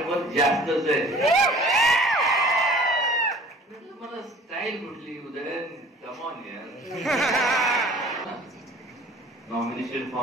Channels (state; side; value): normal; both; correlation 0.48